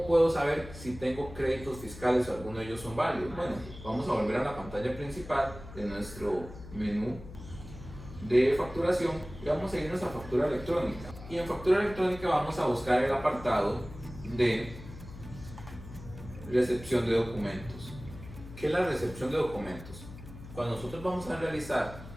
puedo saber si tengo créditos fiscales o alguno de ellos son válidos? Bueno, vamos a volver a la pantalla principal de nuestro menú de facturación y vamos a irnos a factura electrónica. Y en factura electrónica vamos a buscar el apartado de recepción de documentos. ¿Qué es la recepción de documentos? Cuando nosotros vamos a realizar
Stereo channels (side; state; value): left; noise; hum, 15 dB below the sound